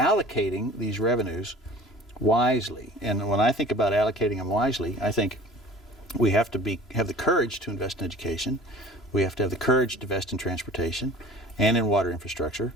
these revenues wisely. And when I think about allocating them wisely, I think we have to have the courage to invest in education. We have to have the courage to invest in transportation and in water infrastructure.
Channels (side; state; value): both; normal; correlation 0.45